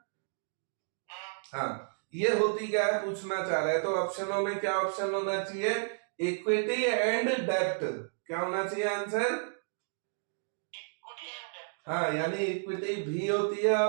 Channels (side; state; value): left; silent; digital silence